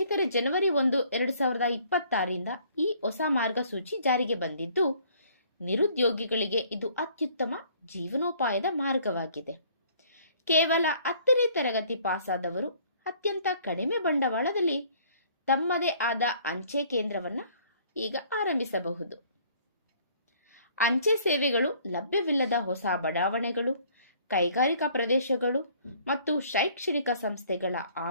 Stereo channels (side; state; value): both; inverted; correlation -0.58